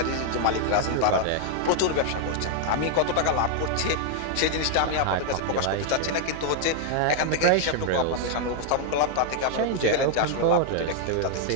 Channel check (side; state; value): both; different; correlation 0.00